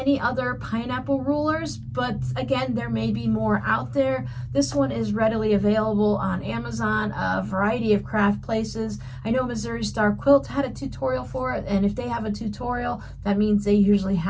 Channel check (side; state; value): both; identical; correlation 1.00